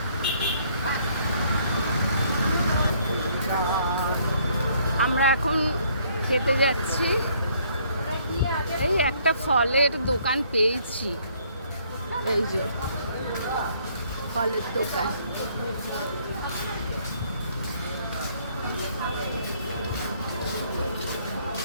আমরা এখন খেতে যাচ্ছি। এই একটা ফলের দোকান পেয়েছি, এই যে ফলের দোকান।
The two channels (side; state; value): both; inverted; correlation -0.65